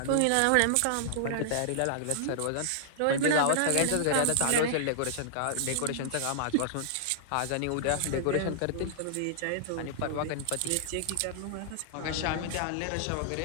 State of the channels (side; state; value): both; different; correlation -0.01